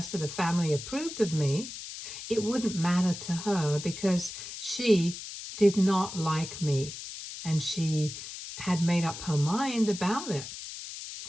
of the family approved of me, it wouldn't matter to her because she did not like me and she had made up her mind about it.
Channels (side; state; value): left; noise; hiss, 10 dB below the sound